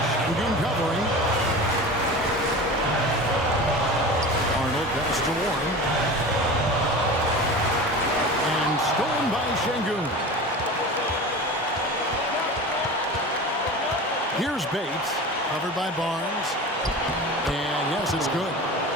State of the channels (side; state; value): both; normal; correlation 0.33